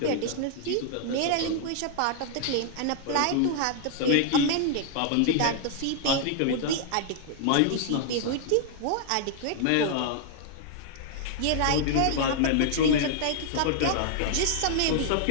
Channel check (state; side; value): different; both; correlation 0.00